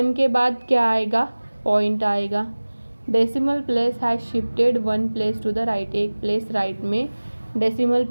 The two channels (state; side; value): inverted; both; correlation -1.00